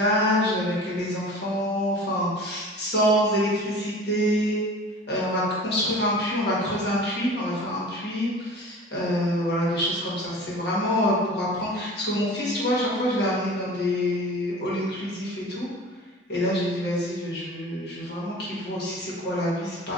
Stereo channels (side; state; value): both; normal; correlation 0.40